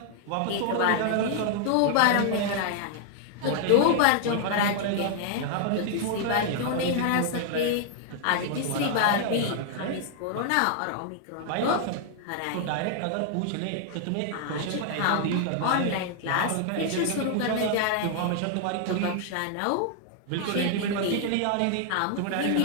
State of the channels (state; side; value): different; both; correlation 0.00